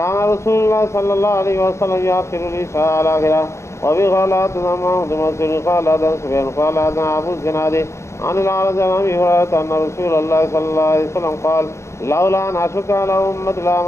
رسول الله صلى الله عليه وسلم يأخر العشاء على آخره. وبغلا محمد مسعود قال هذا سفيان قال هذا أبو الزناد عن الأعرج عن أبي هريرة أن رسول الله صلى الله عليه وسلم قال لولا أن أشق على أمتي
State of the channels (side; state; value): right; late; 0.14 ms